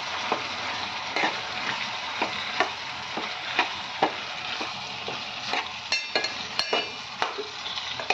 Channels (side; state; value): both; identical; correlation 1.00